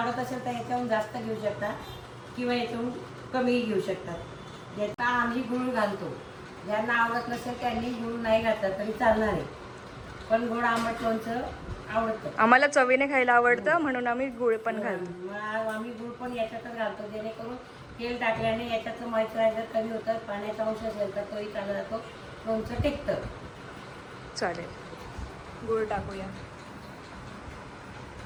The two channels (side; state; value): both; identical; correlation 1.00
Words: असेल तर याच्याहून जास्त घेऊ शकता किंवा याच्याहून कमीही घेऊ शकतात. याचा आम्ही गूळ घालतो. ज्यांना आवडत नसेल त्यांनी गूळ नाही घातला तरी चालणार आहे, पण गोड आंबट लोणचं आवडतं. आम्हाला चवीने खायला आवडतं म्हणून आम्ही गुळ पण घालतो. मग आम्ही गूळ पण याच्यातच घालतो, जेणेकरून तेल टाकल्याने याच्यातलं मॉइश्चरायझर कमी होतं. पाण्याचा अंश असेल तर तोही चालला जातो, लोणचं टिकतं. चालेल, गुळ टाकूया.